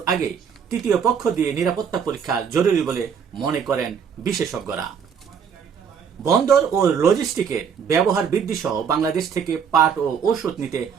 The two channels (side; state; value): left; quieter; 7.1 dB